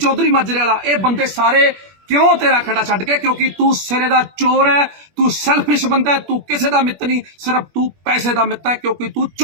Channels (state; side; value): late; left; 21 ms